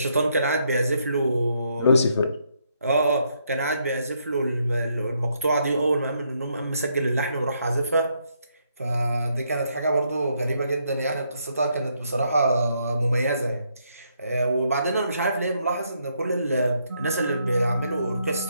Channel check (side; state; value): both; inverted; correlation -0.75